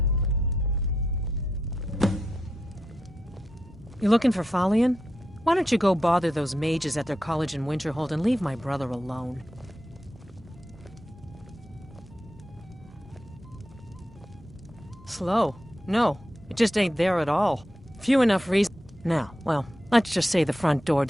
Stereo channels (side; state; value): both; normal; correlation 0.85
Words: You looking for Falion? Why don't you go bother those mages at their college in Winterhold and leave my brother alone? Slow? No, it just ain't there at all. Few enough reasons. Now, well, let's just say the front door